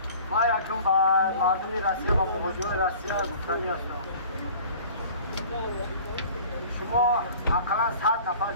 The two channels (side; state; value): both; inverted; correlation -0.46